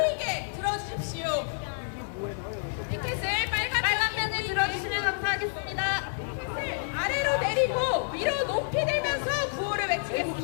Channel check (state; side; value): silent; right; digital silence